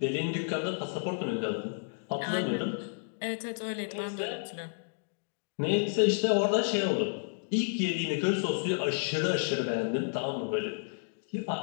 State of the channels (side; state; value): right; silent; digital silence